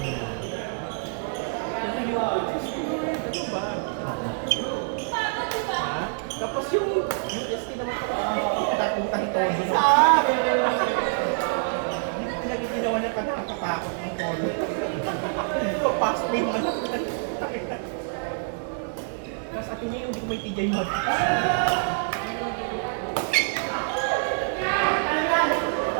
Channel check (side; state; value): left; silent; 61 dB below the other